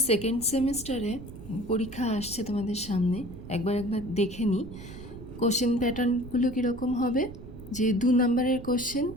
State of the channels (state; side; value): noise; right; rumble, 14 dB below the sound